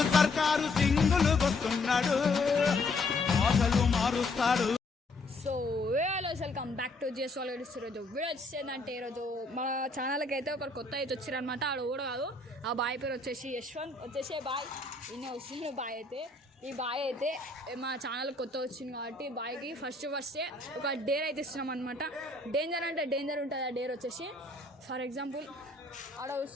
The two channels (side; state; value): right; quieter; 3.1 dB